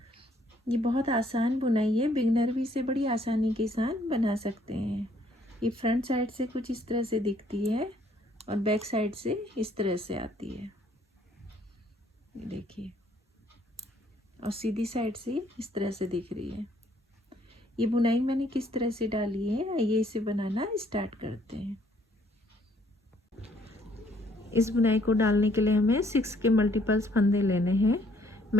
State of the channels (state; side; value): normal; both; correlation 0.65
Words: ये बहुत आसान बुनाई है, बिगनर भी इसे बड़ी आसानी के साथ बना सकते हैं। ये फ्रंट साइड से कुछ इस तरह से दिखती है और बैक साइड से इस तरह से आती है, ये देखिए, और सीधी साइड से इस तरह से दिख रही है। ये बुनाई मैंने किस तरह से डाली है, आइए इसे बनाना स्टार्ट करते हैं। इस बुनाई को डालने के लिए हमें 6 के मल्टीपल्स फंदे लेने हैं।